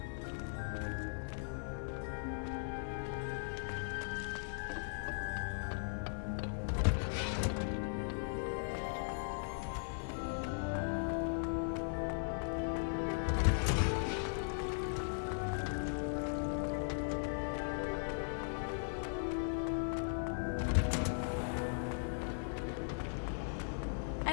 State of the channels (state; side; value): silent; right; digital silence